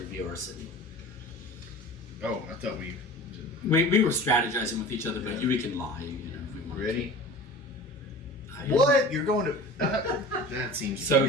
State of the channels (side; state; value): both; normal; correlation 0.38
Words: our city. Oh, I thought we We were strategizing with each other, but we can lie, if we want. ready. To. What? You're going to? That seems. So